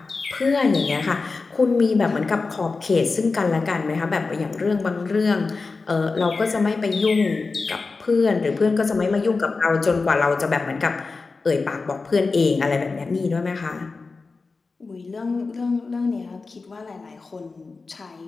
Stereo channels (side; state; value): right; quieter; 4.1 dB